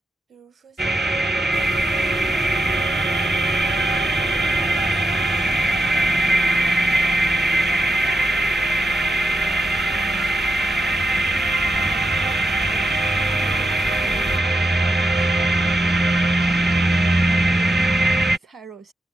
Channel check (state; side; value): normal; both; correlation 0.86